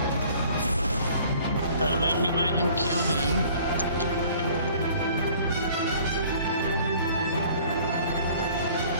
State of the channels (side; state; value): both; inverted; correlation -0.52